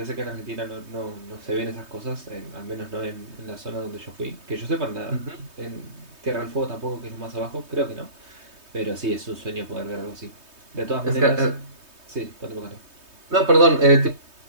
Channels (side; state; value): left; late; 3.2 ms